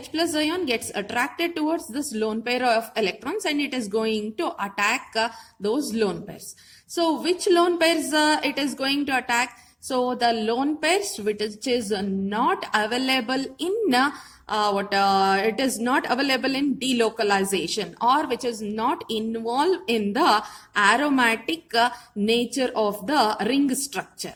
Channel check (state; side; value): identical; both; correlation 1.00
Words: plus ion gets attracted towards this lone pair of electrons and it is going to attack those lone pairs. So which lone pairs it is going to attack? So the lone pairs which is not available in it is not available in delocalization, or which is not involved in the aromatic nature of the ring structure.